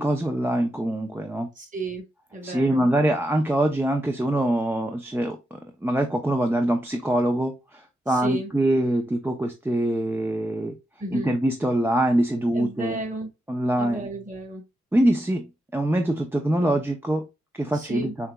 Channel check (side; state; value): both; normal; correlation 0.86